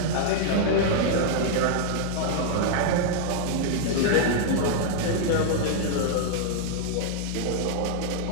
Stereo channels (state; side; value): different; both; correlation -0.01